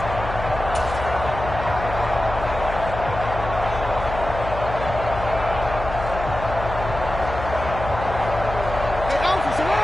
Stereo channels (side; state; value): left; noise; hum, 8 dB below the sound